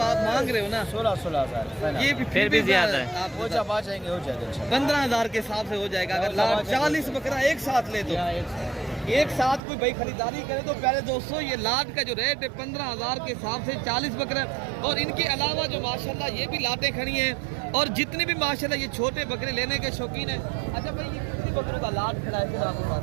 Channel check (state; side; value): drops out; left; at 9.6 s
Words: आप मांग रहे हो ना 16,000। ये भी फिर भी ज्यादा है। आप हो जाएंगे 15,000 के हिसाब से हो जाएगा। अगर लाट 40 बकरा एक साथ ले तो एक साथ कोई भाई खरीदारी करे तो प्यारे दोस्तों, ये लाट का जो रेट है 15,000 के हिसाब से 40 बकरे। और इनके अलावा जो माशाल्लाह ये भी लाटें खड़ी हैं, और जितने भी माशाल्लाह ये छोटे बकरे लेने के शौकीन हैं। अच्छा भाई ये कितनी बकरों का लाट खड़ा है आपके पास?